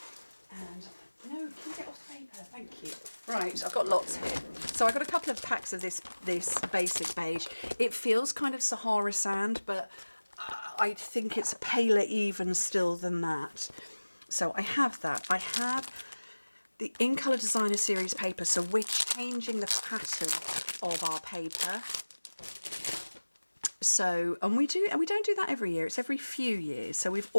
And, no, can you get off the paper? Thank you. Right, I've got lots here. So I got a couple of packs of this basic beige. It feels kind of Sahara sand, but I think it's paler even still than that. So I have that. I have the In Colour Designer Series paper, so we're changing the pattern of our paper. So, and we don't do that every year, it's every few years. So we've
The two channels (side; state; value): both; inverted; correlation -1.00